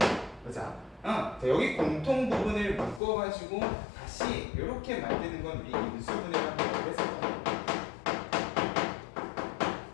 보자. 자, 여기 공통 부분을 묶어가지고 다시 이렇게 만드는 건 우리 인수분해라고 했었거든요.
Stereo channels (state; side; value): drops out; right; at 3.0 s